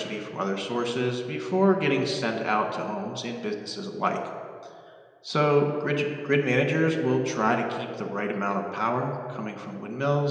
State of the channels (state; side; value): identical; both; correlation 1.00